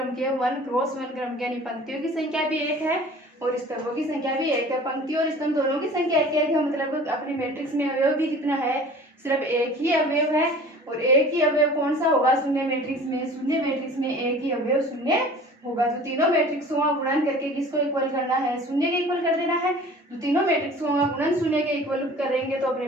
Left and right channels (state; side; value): normal; both; correlation 0.44